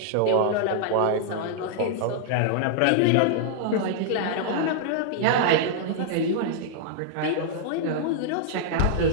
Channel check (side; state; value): both; different; correlation -0.01